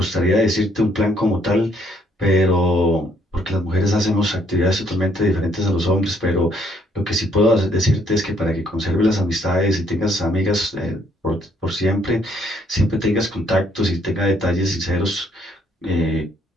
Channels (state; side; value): normal; both; correlation 0.67